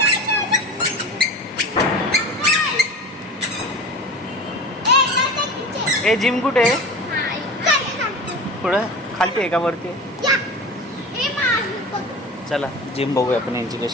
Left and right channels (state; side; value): normal; both; correlation 0.32